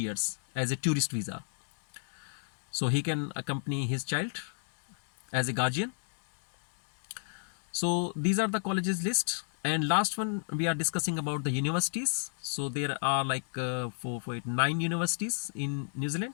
as a tourist visa, so he can accompany his child as a guardian. So these are the colleges list. And last one, we are discussing about the universities. So there are like 9 universities in New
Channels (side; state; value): right; silent; digital silence